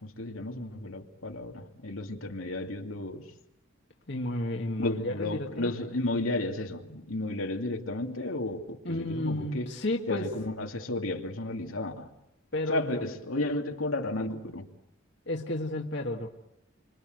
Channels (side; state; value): both; normal; correlation 0.19